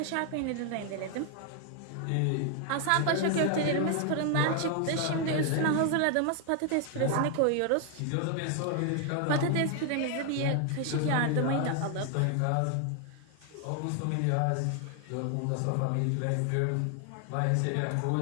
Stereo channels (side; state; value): both; different; correlation 0.00